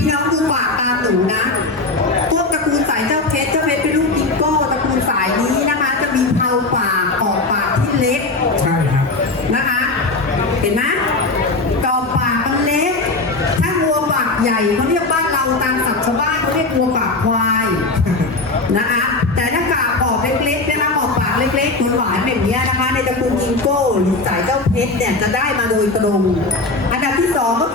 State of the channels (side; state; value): right; quieter; 3.3 dB